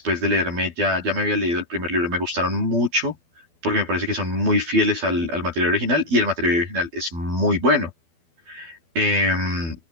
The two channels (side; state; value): left; late; 12 ms